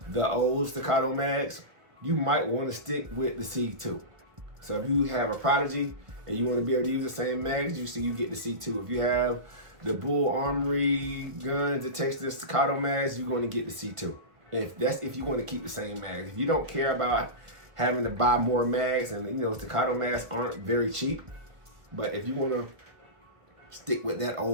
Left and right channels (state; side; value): late; left; 1.3 ms